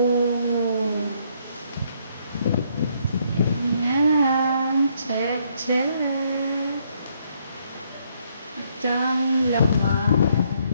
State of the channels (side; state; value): both; inverted; correlation -0.70